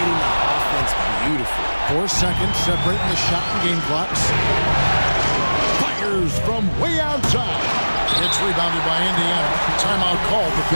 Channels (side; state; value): both; inverted; correlation -1.00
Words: the offense beautifully. 4 seconds separating the shot and game clocks. Fires from way outside. It's rebounded by Indiana. Timeout called the